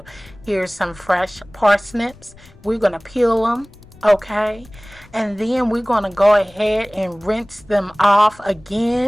Here's some fresh parsnips. We're going to peel them, okay, and then we're going to go ahead and rinse them off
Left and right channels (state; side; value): noise; left; rumble, 25 dB below the sound